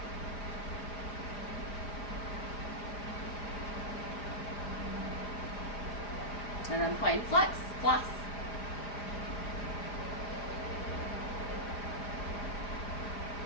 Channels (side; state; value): right; late; 5.0 ms